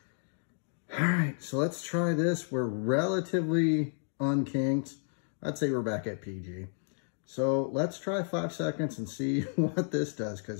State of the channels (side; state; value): right; silent; 57 dB below the other